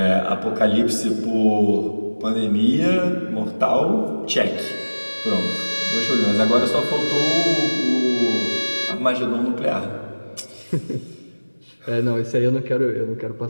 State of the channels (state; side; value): inverted; both; correlation -1.00